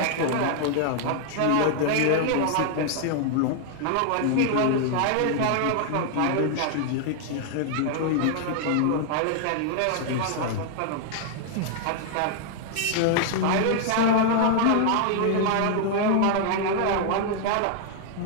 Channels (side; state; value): both; different; correlation 0.00